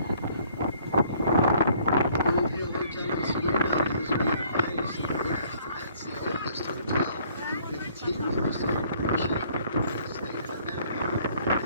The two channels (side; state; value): both; inverted; correlation -0.60